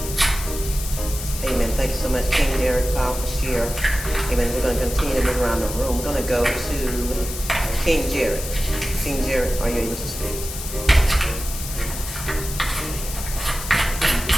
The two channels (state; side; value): noise; left; hiss, 9 dB below the sound